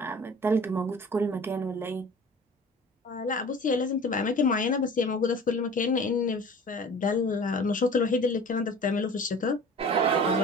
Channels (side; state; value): both; normal; correlation 0.42